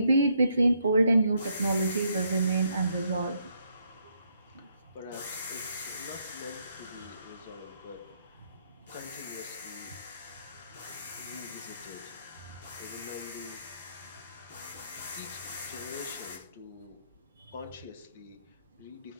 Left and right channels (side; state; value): both; inverted; correlation -0.74